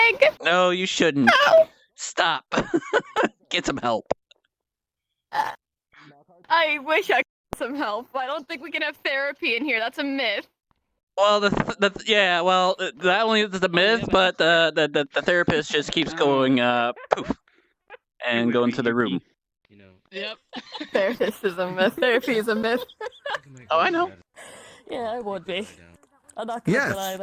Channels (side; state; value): both; identical; correlation 1.00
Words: leg. No, you shouldn't. No. Stop. Get some help. I wish I could get some help. I don't think we can have therapy in here. That's a myth. Well, yeah. Well, not only is it a myth, but the therapist just keeps going poof, and going to the room. Yep. Therapist is a myth. Therapy is a myth. Oh, I know. Yeah, I would be. I'm not gonna Yes, deny